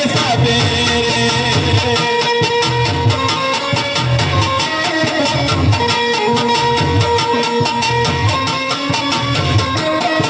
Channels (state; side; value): identical; both; correlation 1.00